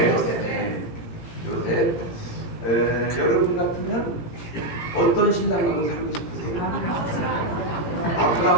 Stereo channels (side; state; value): right; late; 17 ms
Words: 요셉. 여러분 같으면 어떤 신랑하고 살고 싶으세요?